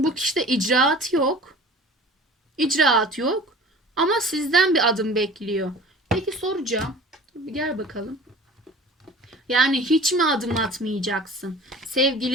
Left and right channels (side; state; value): both; normal; correlation 0.43